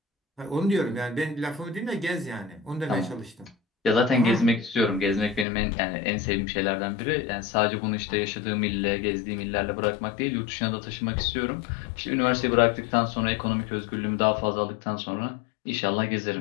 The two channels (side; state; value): right; drops out; at 5.5 s